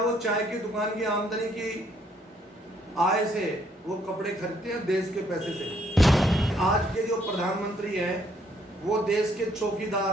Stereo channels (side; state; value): both; normal; correlation 0.68